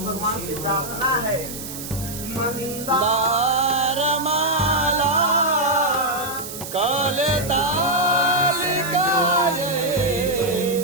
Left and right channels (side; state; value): right; noise; hiss, 10 dB below the sound